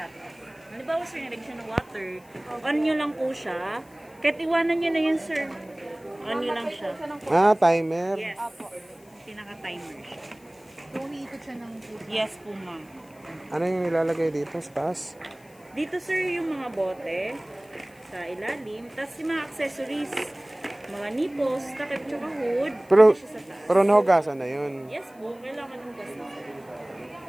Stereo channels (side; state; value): left; noise; hiss, 28 dB below the sound